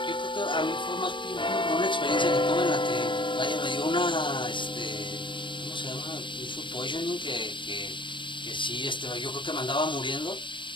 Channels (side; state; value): right; late; 0.23 ms